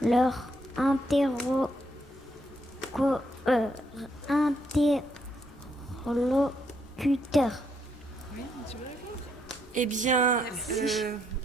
leur interlocuteur? Eh bien,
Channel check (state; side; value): normal; both; correlation 0.75